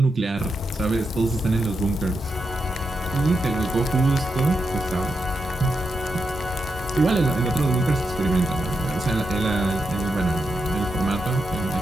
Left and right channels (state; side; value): normal; both; correlation 0.85